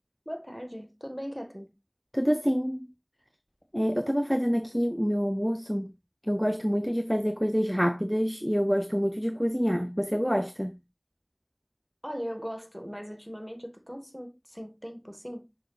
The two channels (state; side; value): identical; both; correlation 1.00